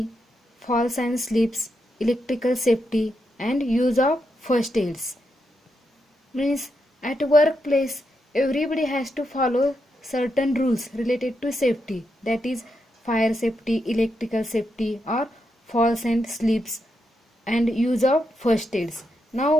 falls and slips, electrical safety and use of first aids. Means at workplace everybody has to follow certain rules related to safety, that is fire safety, electrical safety or falls and slips and use of first aids. Now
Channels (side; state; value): both; normal; correlation 0.83